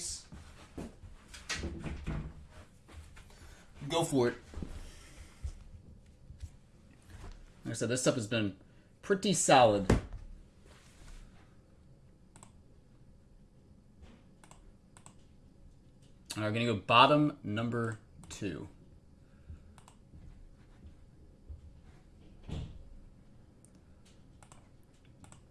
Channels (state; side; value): identical; both; correlation 1.00